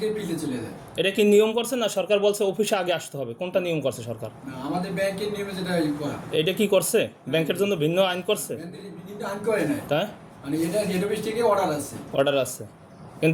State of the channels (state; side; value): identical; both; correlation 1.00